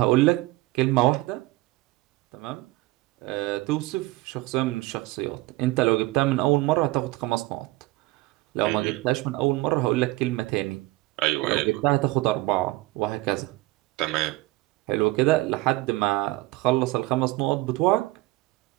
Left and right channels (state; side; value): quieter; left; 20.0 dB